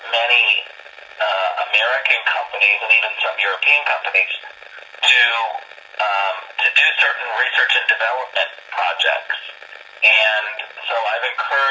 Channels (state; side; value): identical; both; correlation 1.00